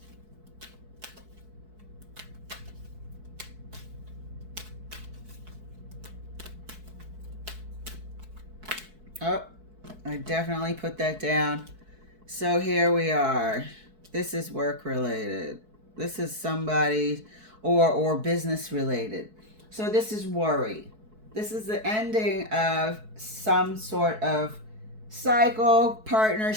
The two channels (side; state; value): left; late; 4.6 ms